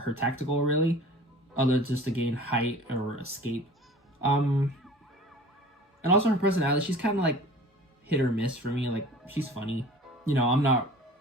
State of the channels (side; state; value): both; normal; correlation 0.43